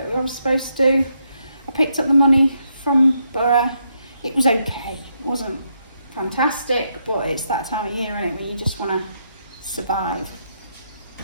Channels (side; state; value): both; inverted; correlation -0.79